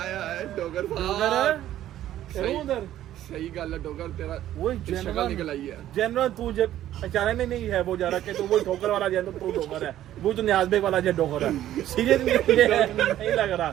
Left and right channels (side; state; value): left; quieter; 12.6 dB